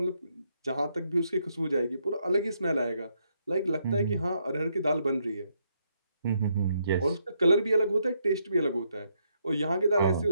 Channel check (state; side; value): inverted; both; correlation -0.76